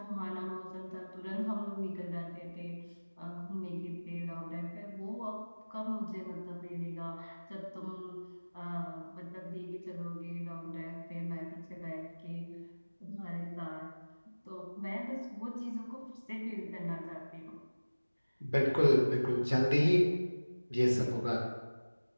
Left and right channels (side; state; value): both; inverted; correlation -1.00